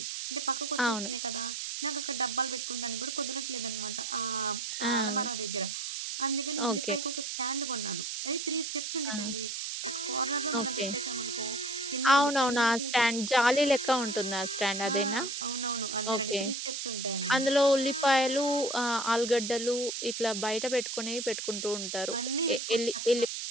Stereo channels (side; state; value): right; noise; hiss, 4 dB below the sound